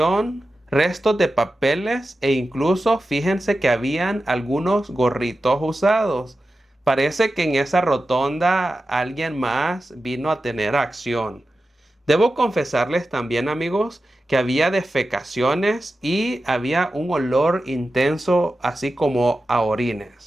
restos de papeles e incluso fíjense que habían algunos gorritos usados. Parece que en esa rotonda alguien más vino a tener acción. Debo confesarles también, amigos, que había defecaciones y había un olor intenso, así como a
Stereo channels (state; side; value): normal; both; correlation 0.93